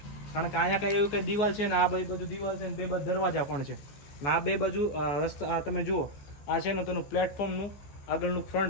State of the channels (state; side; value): late; right; 14 ms